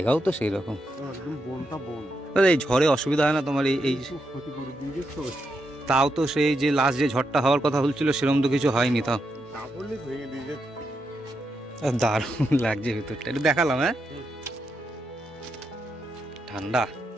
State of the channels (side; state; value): both; normal; correlation 0.83